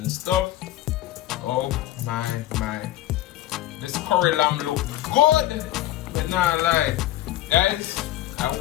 stuff. Oh my. This curry lamb look good, but not lie. Guys, I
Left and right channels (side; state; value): right; quieter; 14.5 dB